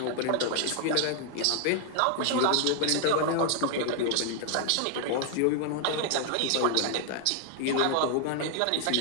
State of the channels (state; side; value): different; both; correlation 0.00